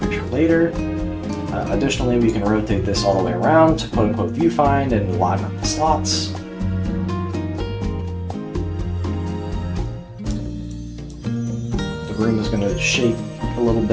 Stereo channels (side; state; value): both; identical; correlation 1.00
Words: picture later. Additionally, we can rotate this all the way around to quote-unquote viewfind and line up the slots. The room is going to shake a little